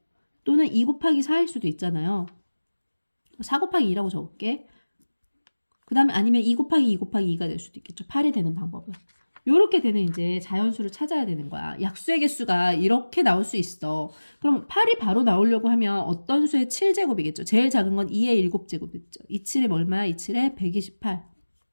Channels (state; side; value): inverted; both; correlation -1.00